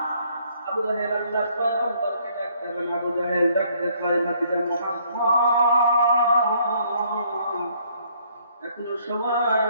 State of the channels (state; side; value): inverted; both; correlation -0.65